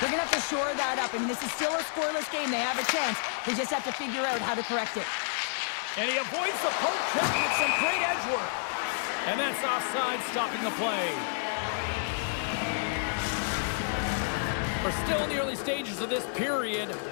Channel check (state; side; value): silent; right; 58 dB below the other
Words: going to have to shore that up. I mean, this is still a scoreless game. They have a chance. They just have to figure out how to correct it. And he avoids the poke check with some great edge work. And that's offside, stopping the play. We're still in the early stages of this period.